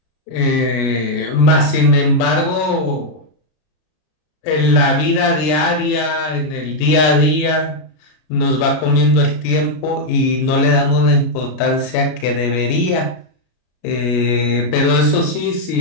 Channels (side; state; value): right; late; 33 ms